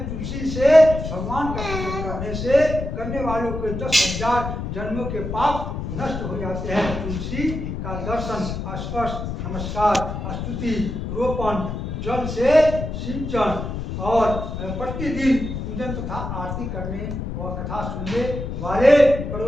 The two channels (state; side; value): noise; left; rumble, 5 dB below the sound